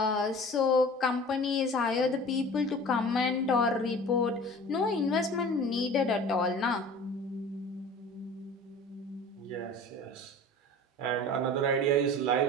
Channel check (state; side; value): normal; both; correlation 0.41